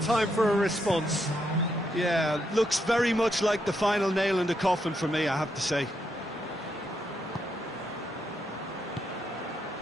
for a response? Yeah, looks very much like the final nail in the coffin for me, I have to say.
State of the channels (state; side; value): normal; both; correlation 0.79